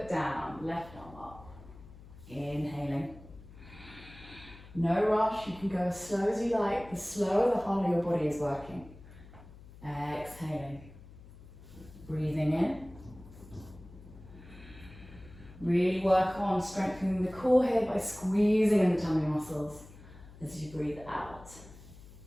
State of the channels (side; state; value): left; noise; hum, 19 dB below the sound